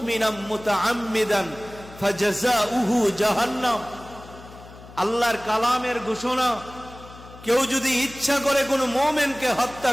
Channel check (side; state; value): left; noise; hum, 18 dB below the sound